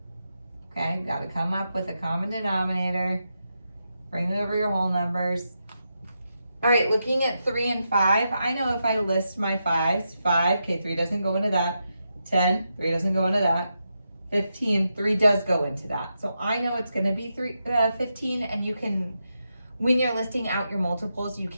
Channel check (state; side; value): inverted; both; correlation -0.85